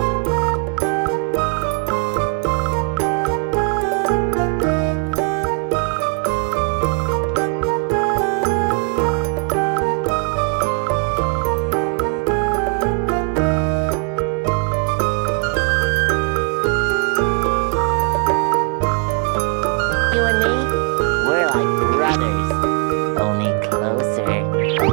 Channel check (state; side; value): quieter; left; 34.9 dB